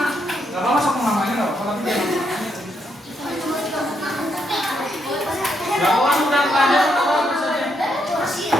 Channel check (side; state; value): both; normal; correlation 0.78